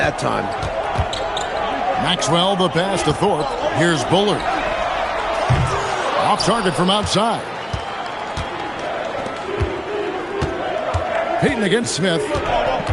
time. Maxwell, the pass to Thorpe. Here's Bullard. Off target from outside. Payton against Smith.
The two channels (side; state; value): both; identical; correlation 1.00